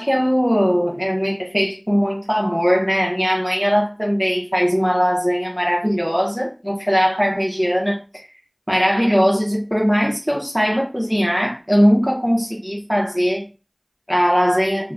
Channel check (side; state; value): both; identical; correlation 1.00